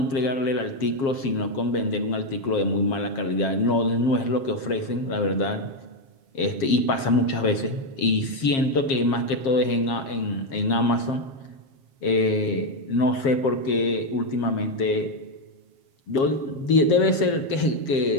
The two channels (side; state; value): right; late; 7.5 ms